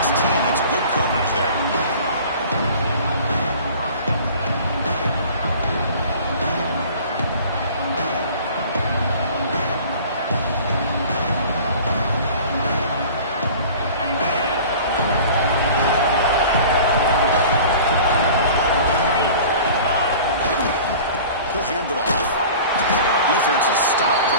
That's good coverage there. He'll hand it off. Defense is stopped for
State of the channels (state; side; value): inverted; both; correlation -0.43